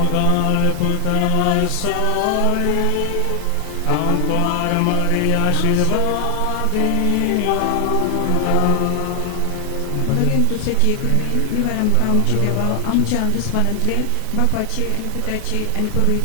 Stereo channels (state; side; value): different; both; correlation 0.00